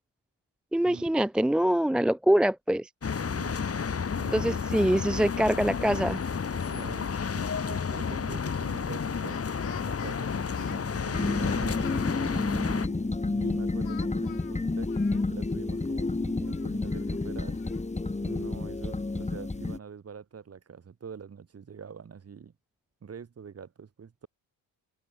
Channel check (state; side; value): normal; both; correlation 0.77